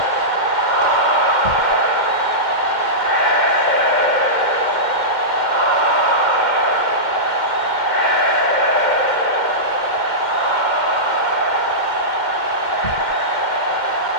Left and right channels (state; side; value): late; right; 2.1 ms